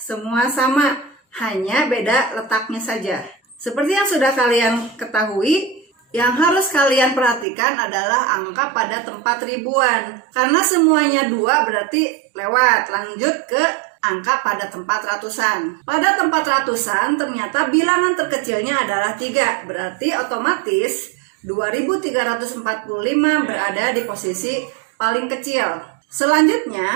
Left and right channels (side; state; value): left; drops out; at 7.5 s